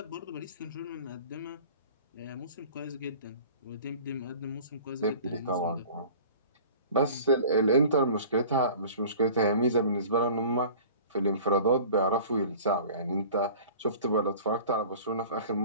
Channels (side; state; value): both; inverted; correlation -0.44